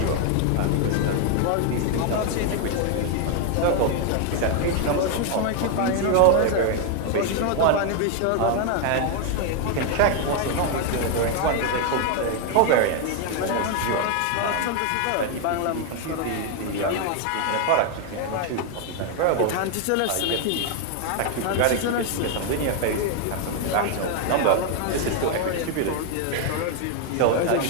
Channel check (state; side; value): different; both; correlation 0.01